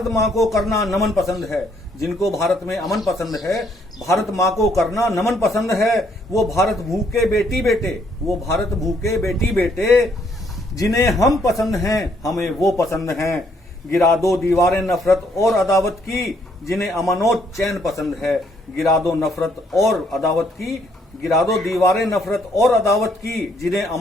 माँ को करना नमन पसंद है। जिनको भारत में अमन पसंद है, भारत माँ को करना नमन पसंद है, वो भारत भूखे बेटी बेटे, वो भारत भूखे बेटी बेटे। जिन्हें हम पसंद हैं हमें वो पसंद हैं, गिरा दो दीवारें नफरत और अदावत की। जिन्हें अमन और चैन पसंद है, गिरा दो नफरत और अदावत की, गिरा दो दीवारें नफरत और अदावत की। जिन्हें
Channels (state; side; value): normal; both; correlation 0.69